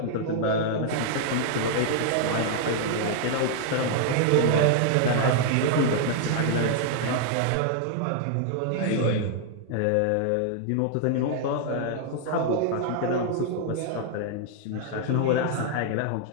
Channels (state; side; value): different; both; correlation 0.00